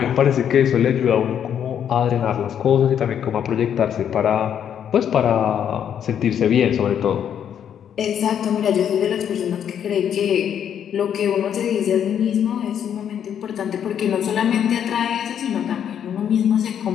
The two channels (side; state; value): right; quieter; 9.0 dB